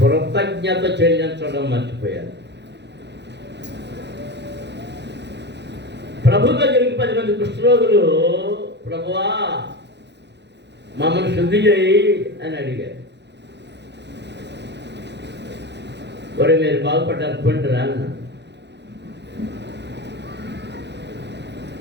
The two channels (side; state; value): left; late; 0.50 ms